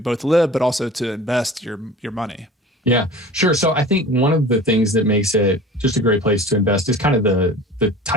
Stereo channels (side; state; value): both; normal; correlation 0.41